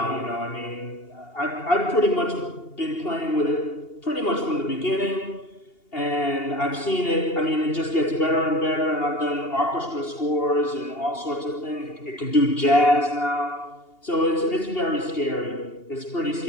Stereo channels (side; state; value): right; late; 2.8 ms